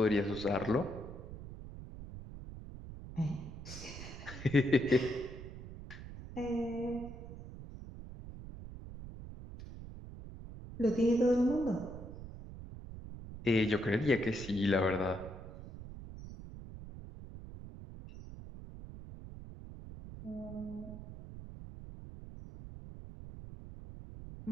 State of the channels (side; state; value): right; noise; rumble, 12 dB below the sound